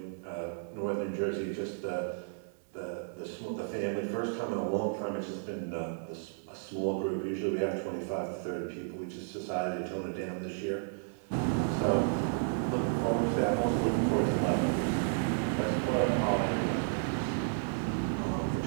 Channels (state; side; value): silent; left; digital silence